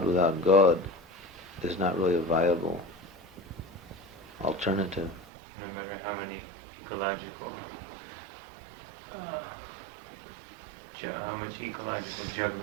without God is not really a viable alternative. No matter how many ecological, how much ecological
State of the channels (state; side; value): drops out; left; at 5.2 s